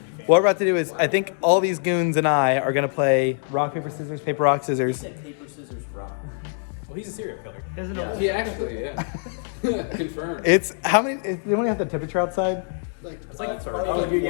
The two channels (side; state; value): right; silent; 62 dB below the other